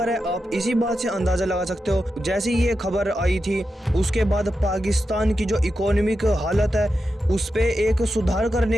है आप इसी बात से अंदाज़ा लगा सकते हो। जैसे ये खबर आई थी उसके बाद पाकिस्तान की जो इकोनॉमिक हालत है उस पर एक सुधार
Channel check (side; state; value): both; normal; correlation 0.89